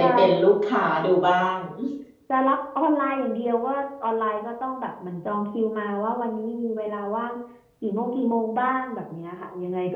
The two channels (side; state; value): both; identical; correlation 1.00